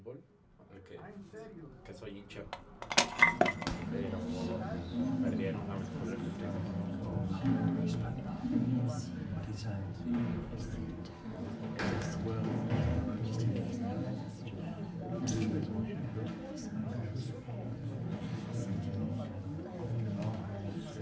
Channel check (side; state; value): both; identical; correlation 1.00